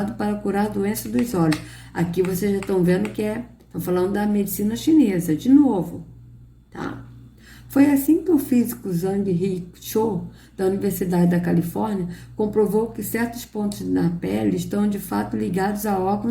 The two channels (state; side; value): identical; both; correlation 1.00